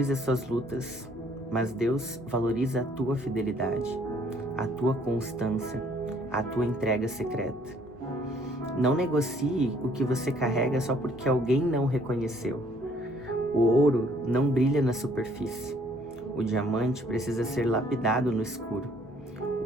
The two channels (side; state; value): both; normal; correlation 0.63